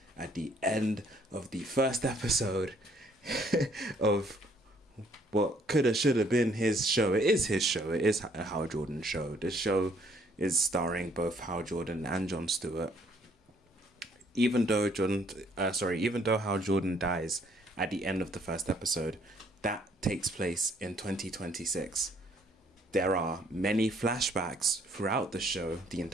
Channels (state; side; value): normal; both; correlation 0.64